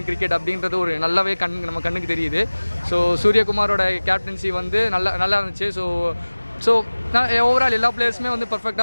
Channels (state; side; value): inverted; both; correlation -1.00